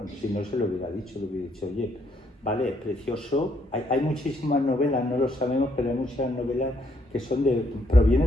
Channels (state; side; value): normal; both; correlation 0.71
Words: Si no se lo hubiera dicho, oye, vale, es precioso. Hay muchísimas novelas, no lo sabemos, pero hay muchas novelas que